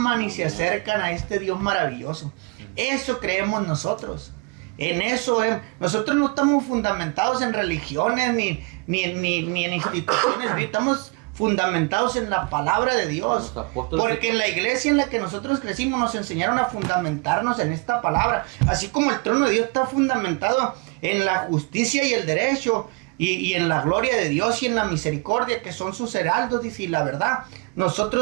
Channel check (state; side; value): quieter; left; 29.4 dB